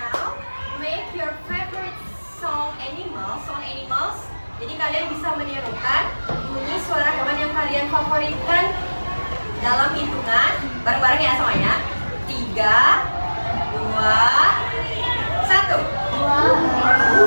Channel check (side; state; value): both; inverted; correlation -1.00